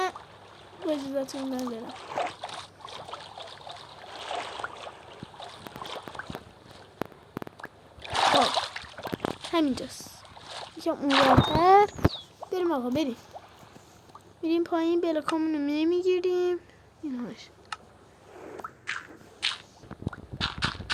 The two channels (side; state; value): both; identical; correlation 1.00